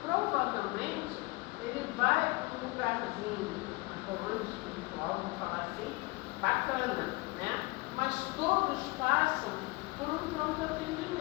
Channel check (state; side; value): quieter; right; 25.2 dB